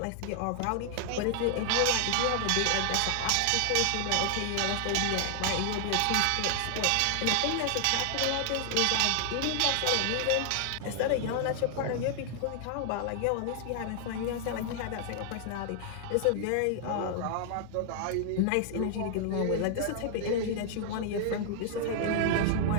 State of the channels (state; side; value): different; both; correlation 0.00